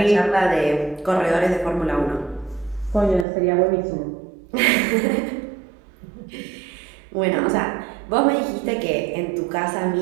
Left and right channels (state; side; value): drops out; left; at 3.2 s